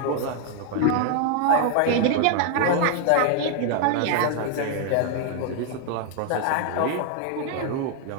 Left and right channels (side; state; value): both; different; correlation 0.00